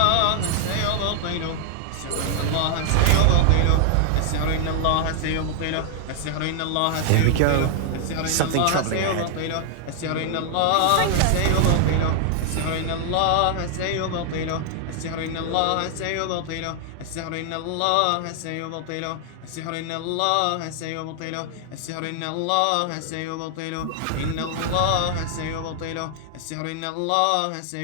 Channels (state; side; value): different; both; correlation 0.00